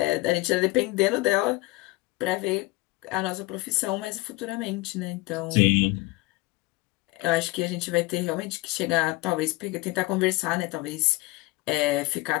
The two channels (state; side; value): quieter; right; 21.5 dB